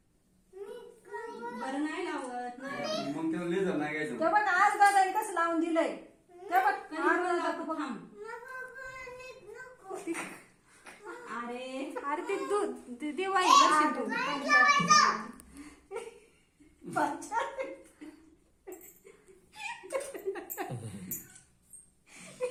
बरं नाही लावत नाही. मग त्याला लेझर नाही घ्यायचं. ते बघ आज दादाने कसं लावून दिलंय. ते बघ कधी लावतो थांब. अरे अरे ते दूध दिवाळी करशील तू.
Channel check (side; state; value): both; identical; correlation 1.00